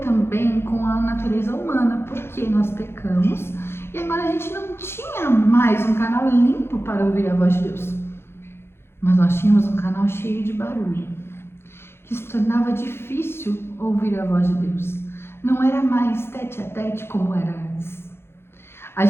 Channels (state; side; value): late; right; 0.12 ms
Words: com a natureza humana, porque nós pecamos e agora a gente não tinha mais um canal limpo para ouvir a voz de Deus. Mas nós tínhamos um canal cheio de barulho, que se tornava difícil ouvir a voz de Deus. não era mais tete a tete como era antes. A